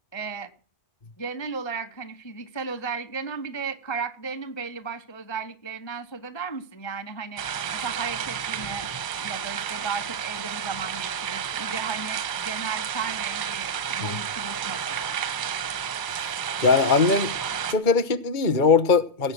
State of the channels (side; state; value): right; late; 1.0 ms